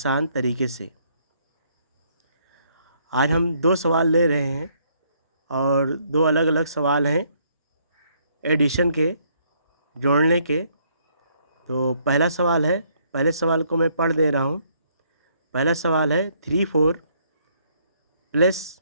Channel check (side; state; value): both; inverted; correlation -0.68